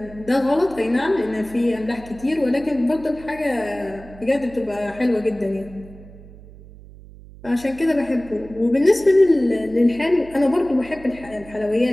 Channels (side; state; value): right; noise; hum, 19 dB below the sound